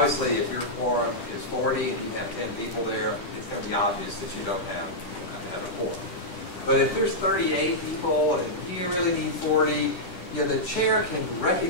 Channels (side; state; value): right; late; 10 ms